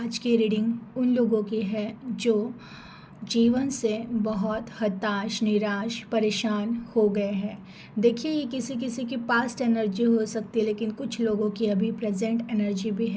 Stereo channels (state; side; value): identical; both; correlation 1.00